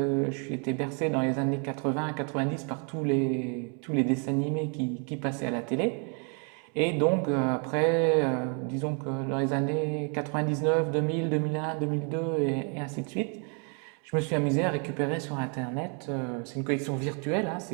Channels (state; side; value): quieter; left; 38.5 dB